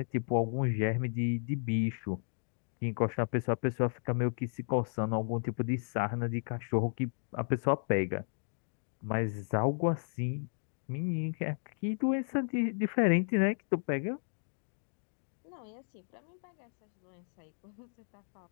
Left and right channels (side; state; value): right; silent; digital silence